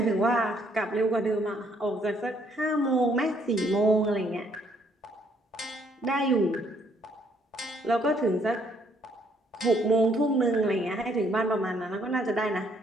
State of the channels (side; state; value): both; normal; correlation 0.68